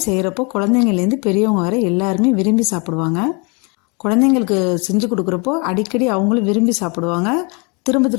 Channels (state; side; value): quieter; right; 31.8 dB